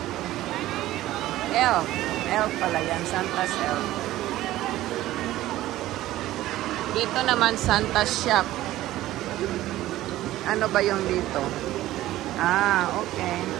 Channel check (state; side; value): quieter; left; 15.3 dB